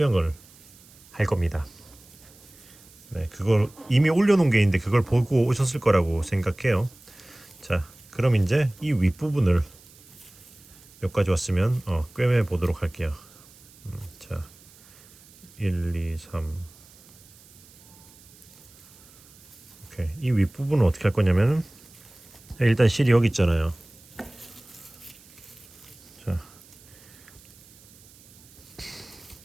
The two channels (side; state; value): right; noise; hiss, 24 dB below the sound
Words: 할 겁니다. 네, 그걸 이미 올려놓은 게 있는데 그걸 보고 오셨을 거라고 생각해요. 자, 그럼 이제 이 윗부분을 여기까지 왔으면 꿰매 보도록 할게요. 자, 1, 2, 3. 오케이. 이 윗부분은 어떻게 할 거냐면은 일단 실이 여기 있잖아요. 자,